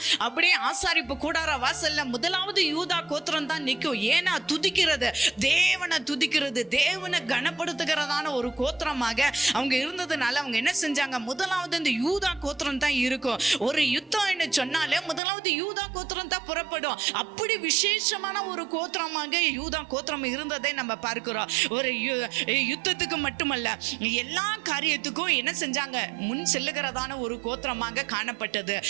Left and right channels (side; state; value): left; drops out; at 15.2 s